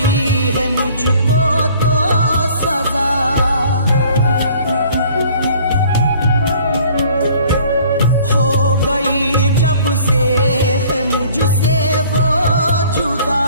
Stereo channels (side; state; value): both; inverted; correlation -0.53